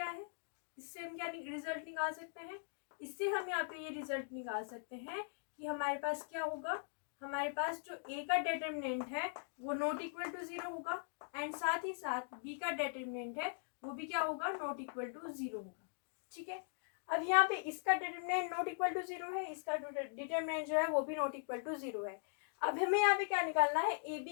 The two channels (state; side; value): silent; right; digital silence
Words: है, इससे हम क्या रिजल्ट निकाल सकते हैं, इससे हम यहाँ पे ये रिजल्ट निकाल सकते हैं कि हमारे पास क्या होगा, हमारे पास जो ए का डिटरमिनेंट है वो नॉट इक्वल टू 0 होगा, एंड साथ ही साथ बी का डिटरमिनेंट है वो भी क्या होगा, नॉट इक्वल टू 0 होगा। ठीक है, अब यहाँ पे इसका डिटरमिनेंट नॉट इक्वल टू 0 है, इसका डिटरमिनेंट जो है वो भी नॉट इक्वल टू 0 है। अब हमें यहाँ पे क्या निकालना है, ए